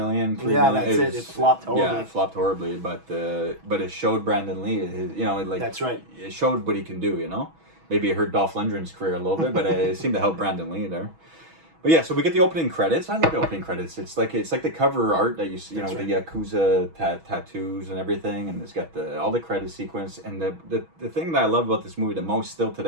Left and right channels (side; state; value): left; late; 6.2 ms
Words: $3 million. That's it. It flopped horribly. Yeah, it flopped horribly. But it showed Brennan Leaney. That's right. It showed what he can do. Maybe it hurt Dolph Lundgren's career a little bit, but it seemed to help Brennan Leaney there. But yeah, so we get the opening credits. I love the opening credits. It's like the cover art that you see, with the Yakuza tattoos and everything, and it's got all the credit sequence. And the thing that I love about this movie the most still